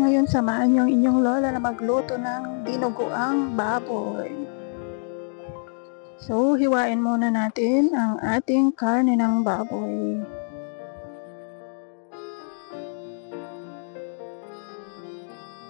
samahan niyo ang inyong lola na magluto ng dinuguang baboy. So, hiwain muna natin ang ating karne ng baboy.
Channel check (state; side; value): silent; right; digital silence